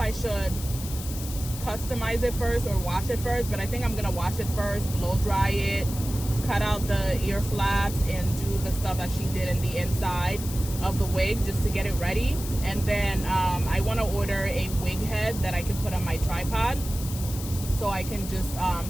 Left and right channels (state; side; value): noise; left; hiss, 11 dB below the sound